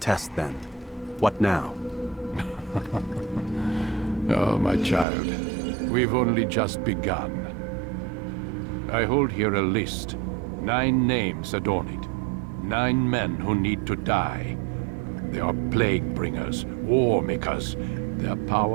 then. What now? Oh, my child. We've only just begun. I hold here a list. 9 names adorn it. 9 men who need to die. They are plague bringers, war makers. Their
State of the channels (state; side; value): drops out; left; at 5.1 s